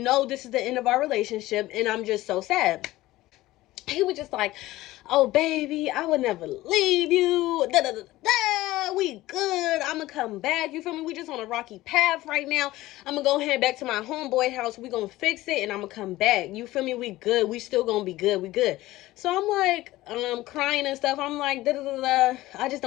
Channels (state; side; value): quieter; right; 17.2 dB